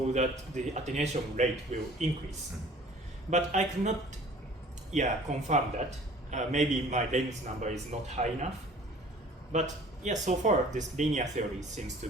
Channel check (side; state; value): both; normal; correlation 0.49